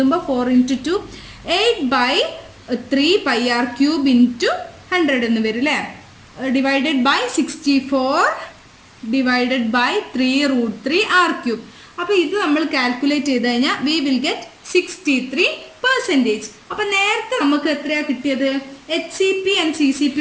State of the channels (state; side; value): identical; both; correlation 1.00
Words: 4 × 2 8/3 πr³ × 100 എന്ന് വരും അല്ലേ? Divided by 64 divided by 3√3 r³. അപ്പോൾ ഇത് നമ്മൾ കാൽക്കുലേറ്റ് ചെയ്ത് കഴിഞ്ഞാൽ വി വിൽ ഗെറ്റ് 63%. അപ്പം നേരത്തെ നമുക്ക് എത്രയാണ് കിട്ടിയത്? HCP ആൻഡ്